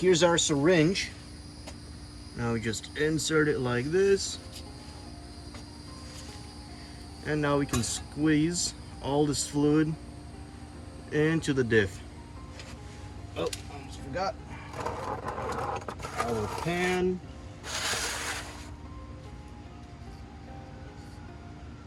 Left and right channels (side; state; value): both; identical; correlation 1.00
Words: our syringe. Now we just insert it like this. And now we can squeeze all this fluid into the diff. Oh, almost forgot. Our pan.